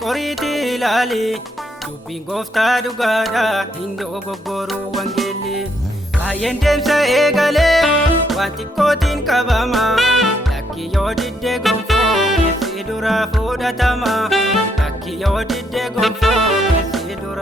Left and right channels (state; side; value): normal; both; correlation 0.73